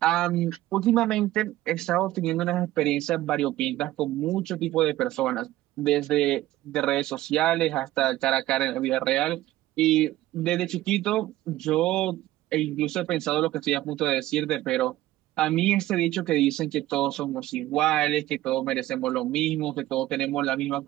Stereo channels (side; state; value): left; quieter; 15.6 dB